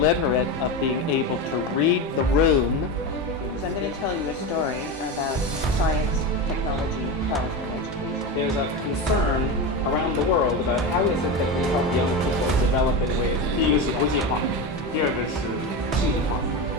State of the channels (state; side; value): normal; both; correlation 0.20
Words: of being able to read the room. So I'm going to tell you a story about science, technology, health, and education. There's a concern around the world about how is it that we help young people develop in ways. 第一个是国际化，第二个是数字化，